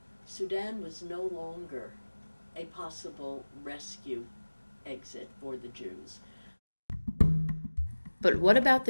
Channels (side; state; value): both; inverted; correlation -1.00